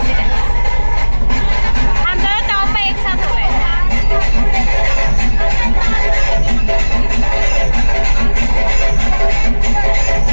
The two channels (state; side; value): inverted; both; correlation -1.00